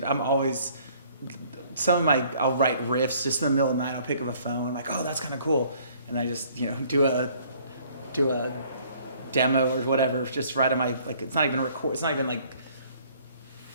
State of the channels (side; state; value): both; inverted; correlation -0.58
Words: I'm always, I'll write riffs just in the middle of the night. I'll pick up a phone. I'm like, oh, that's kind of cool. And I just, do a demo or whatever, just right on my, like, it's not even like,